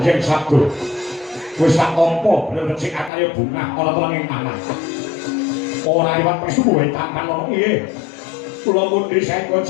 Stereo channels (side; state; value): right; drops out; at 3.1 s